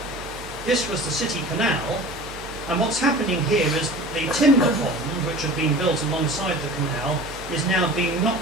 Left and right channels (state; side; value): normal; both; correlation 0.39